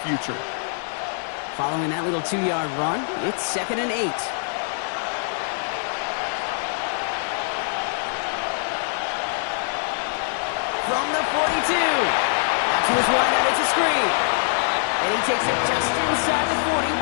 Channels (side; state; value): right; silent; digital silence